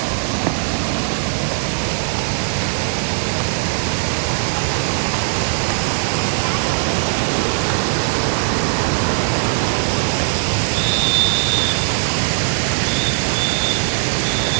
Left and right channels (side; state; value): left; silent; digital silence